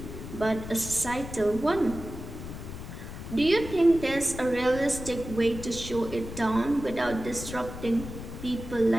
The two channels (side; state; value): left; noise; rumble, 10 dB below the sound